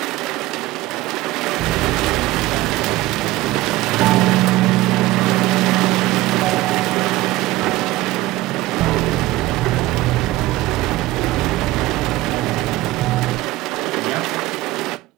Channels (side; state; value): left; quieter; 17.7 dB